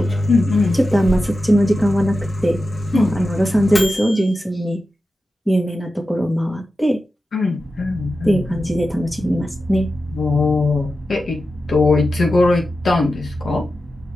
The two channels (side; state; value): both; normal; correlation 0.92